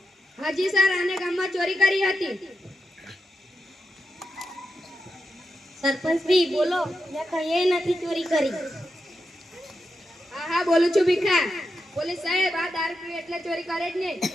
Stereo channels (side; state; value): both; normal; correlation 0.86